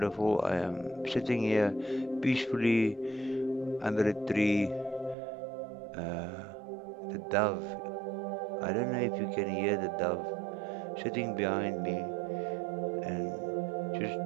I am sitting here peacefully under a tree. Uh, the dove. I don't know if you can hear the dove sitting behind me and just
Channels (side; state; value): left; drops out; at 5.2 s